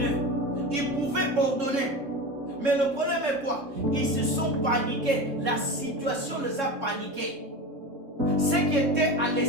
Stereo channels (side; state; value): left; late; 3.6 ms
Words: Ils pouvaient ordonner. Mais le problème est quoi? Ils se sont paniqués. La situation les a paniqués. Ce qui était à